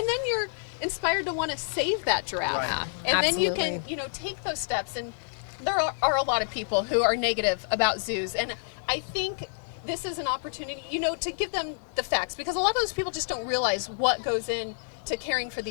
you're inspired to want to save that giraffe. And then you can, you know, take those steps. And there are a lot of people who are negative about zoos, and I think this is an opportunity, you know, to give them the facts, because a lot of those people just don't realize what goes into caring for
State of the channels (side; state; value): right; silent; 59 dB below the other